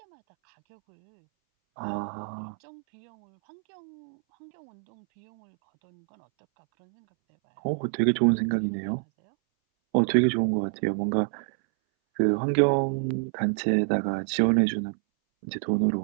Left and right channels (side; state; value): left; silent; 60 dB below the other